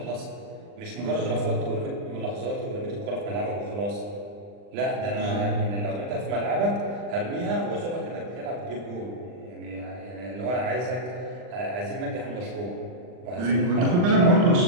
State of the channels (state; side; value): late; left; 40 ms